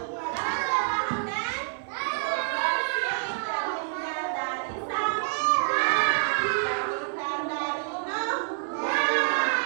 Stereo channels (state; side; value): silent; left; 56 dB below the other